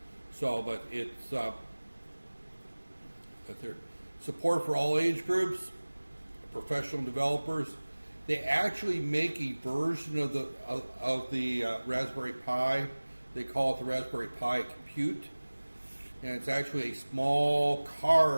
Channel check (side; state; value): both; inverted; correlation -1.00